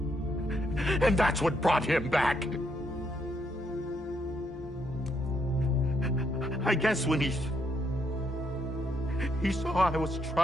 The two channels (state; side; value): normal; both; correlation 0.75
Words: And that's what brought him back. I guess when he saw I was